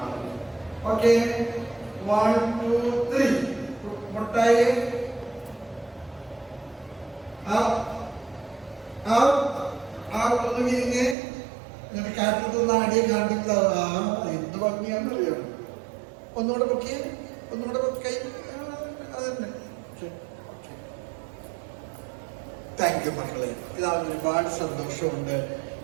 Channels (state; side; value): drops out; left; at 11.2 s